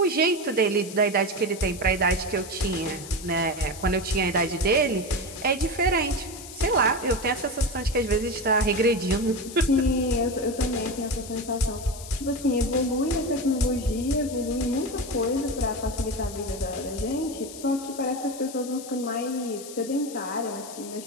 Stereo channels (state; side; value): noise; left; hiss, 14 dB below the sound